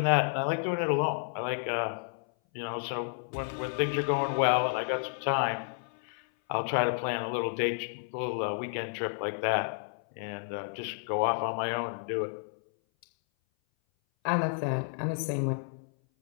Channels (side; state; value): right; silent; 57 dB below the other